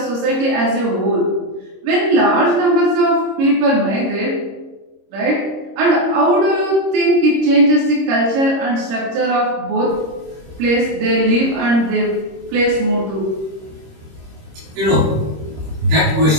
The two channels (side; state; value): left; late; 26 ms